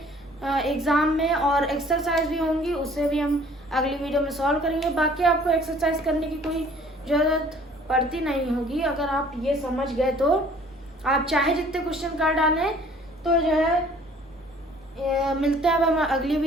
एग्ज़ाम में, और एक्सरसाइज भी होंगी, उससे भी हम अगली वीडियो में सॉल्व करेंगे। बाकी आपको एक्सरसाइज करने की कोई ज़रूरत पड़ती नहीं होगी, अगर आप ये समझ गए तो आप चाहे जितने क्वेश्चन कर डालें। तो जो है मिलते हैं अब हम अगली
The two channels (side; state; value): both; normal; correlation 0.54